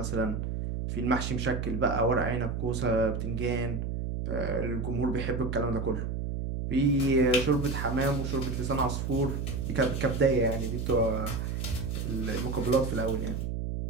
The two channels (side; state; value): right; noise; hum, 3 dB below the sound